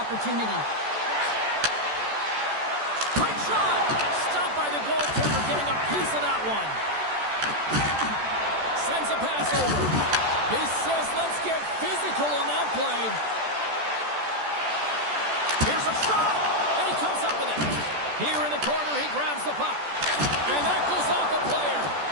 Quick shot! Stopped by the goaltender, getting a piece of that one. Sends a pass over. He says, let's get physical on that play. Here's a shot, and he comes up with it. Here in the corner, he grabs the puck. And that goes off a player.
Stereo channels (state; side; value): late; left; 14 ms